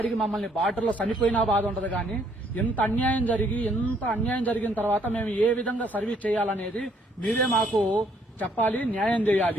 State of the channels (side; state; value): both; normal; correlation 0.67